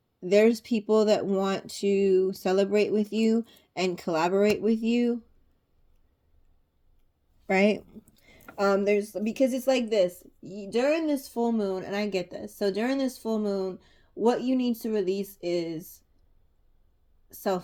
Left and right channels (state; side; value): identical; both; correlation 1.00